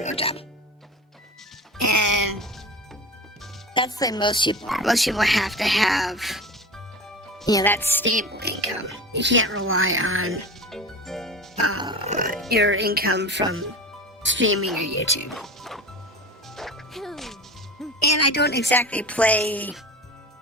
real job. And that's the way most people are. Most people have to have, that stable income. You can't rely on your income from streaming or YouTube. And I don't exactly play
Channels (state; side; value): normal; both; correlation 0.32